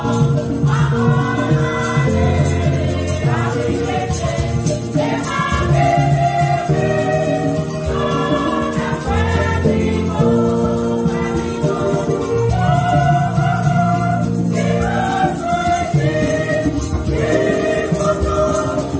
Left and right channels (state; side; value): identical; both; correlation 1.00